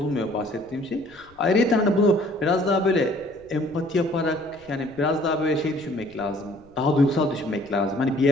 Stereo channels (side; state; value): left; noise; rumble, 28 dB below the sound